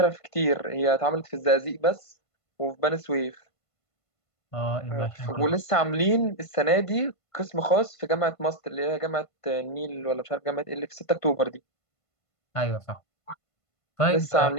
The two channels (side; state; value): right; late; 1.5 ms